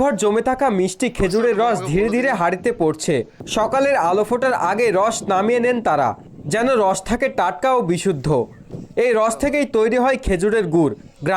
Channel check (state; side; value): identical; both; correlation 1.00